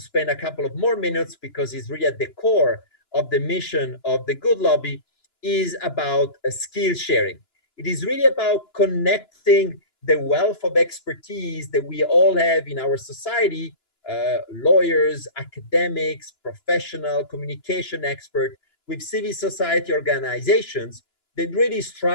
spend a couple of more minutes, because it's really at the core of the mission of the Good Lobby, is about skill sharing. It is really about connecting the wealth of expertise that we all have in our society, lawyers, academics, professional, communication expert, with civil society organizations that really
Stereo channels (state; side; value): late; right; 2.9 ms